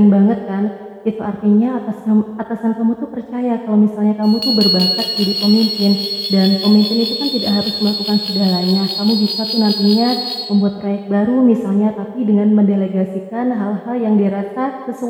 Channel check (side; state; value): both; identical; correlation 1.00